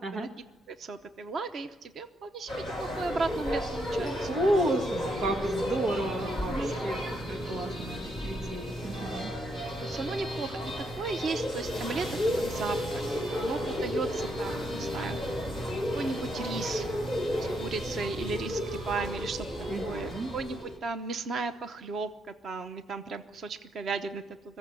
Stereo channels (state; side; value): normal; both; correlation 0.77